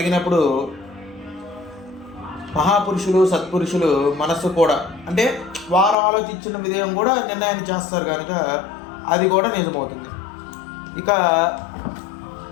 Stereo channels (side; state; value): right; drops out; at 6.0 s